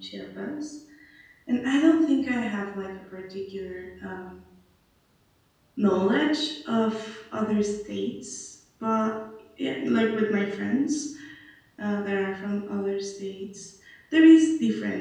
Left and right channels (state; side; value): identical; both; correlation 1.00